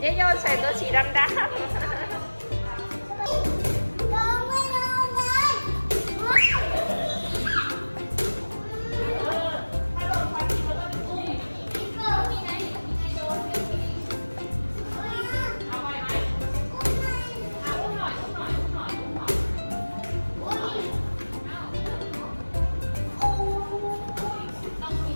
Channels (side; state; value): both; inverted; correlation -1.00